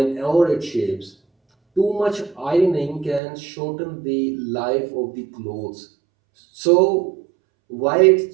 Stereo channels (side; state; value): left; drops out; at 3.2 s